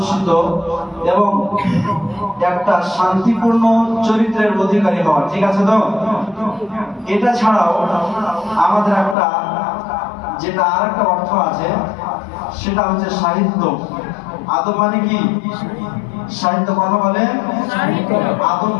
এবং একটা শান্তিপূর্ণ চরিত্রের অধিকারী হওয়া। ঠিক আছে তো? এটা ছাড়াও আমাদের একটা যেটা আর একটা অর্থ আছে, সেটা হচ্ছে সাহিত্য। আদব মানে কি? সাহিত্য। কথা বলে আদব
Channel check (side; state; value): right; drops out; at 9.2 s